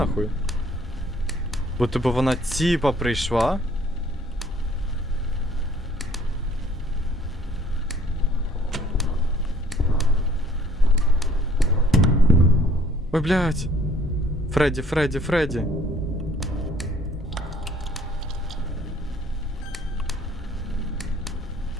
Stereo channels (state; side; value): normal; both; correlation 0.58